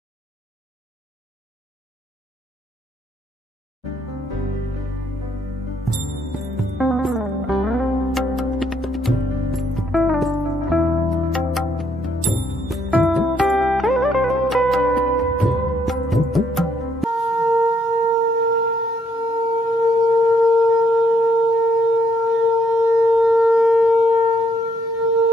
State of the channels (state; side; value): normal; both; correlation 0.71